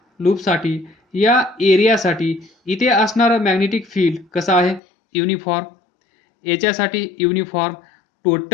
लूपसाठी या एरियासाठी इथे असणारं मॅग्नेटिक फील्ड कसं आहे, युनिफॉर्म. याच्यासाठी युनिफॉर्म.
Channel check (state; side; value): drops out; right; at 4.8 s